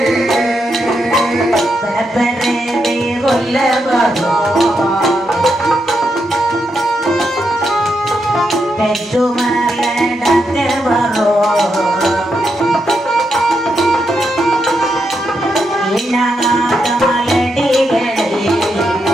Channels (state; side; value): normal; both; correlation 0.82